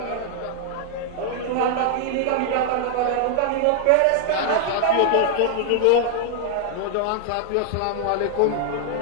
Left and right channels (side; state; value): both; different; correlation 0.00